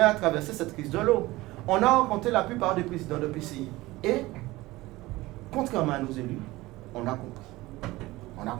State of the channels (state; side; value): quieter; left; 19.4 dB